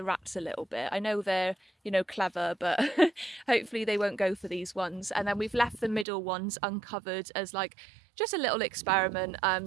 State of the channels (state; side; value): drops out; left; at 6.1 s